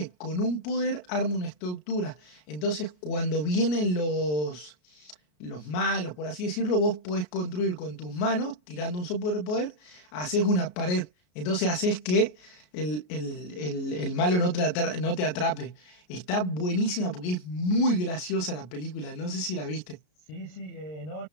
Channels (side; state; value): right; late; 33 ms